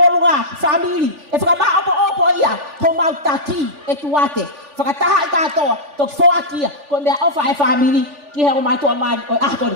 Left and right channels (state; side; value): late; left; 3.4 ms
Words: family e whakama opo ia ho mau taki e tuate whakataha i katoa tok whoakia ko mea ofa e family ki he o mātua mani o ahakoni